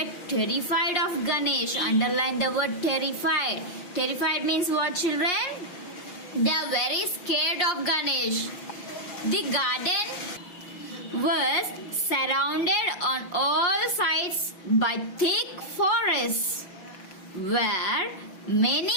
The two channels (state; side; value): late; right; 6.1 ms